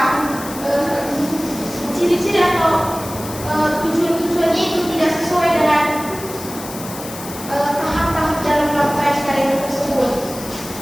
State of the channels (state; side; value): noise; left; hiss, 12 dB below the sound